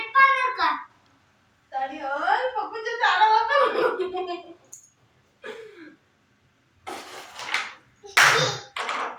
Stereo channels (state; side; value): identical; both; correlation 1.00